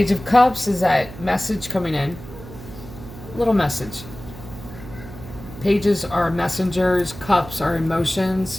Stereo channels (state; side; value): noise; right; hum, 15 dB below the sound